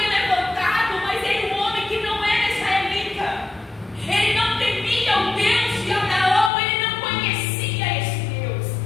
levantado, mas ele um homem que não era israelita. Ele não temia o Deus de Abraão, ele não conhecia esse Deus.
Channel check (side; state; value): right; drops out; at 6.5 s